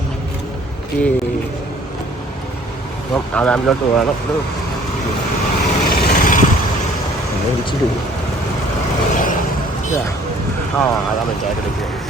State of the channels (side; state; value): both; normal; correlation 0.56